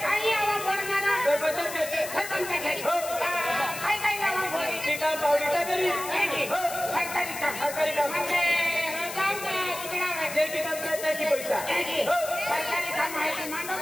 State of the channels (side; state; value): left; noise; hiss, 9 dB below the sound